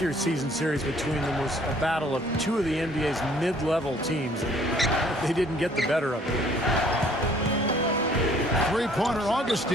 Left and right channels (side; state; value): both; normal; correlation 0.59